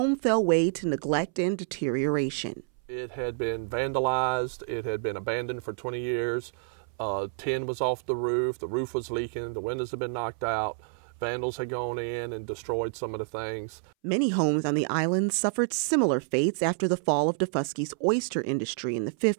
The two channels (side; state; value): left; silent; 59 dB below the other